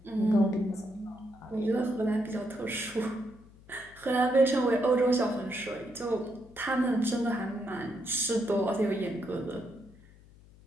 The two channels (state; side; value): noise; left; hum, 24 dB below the sound